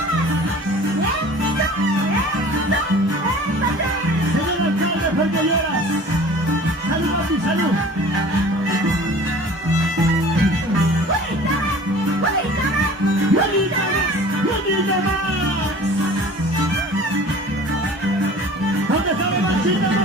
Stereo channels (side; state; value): both; normal; correlation 0.44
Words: Señor alcalde, ¿por qué lloras? ¡Salud, papi, salud! ¡Bonita más! ¿Dónde está la machita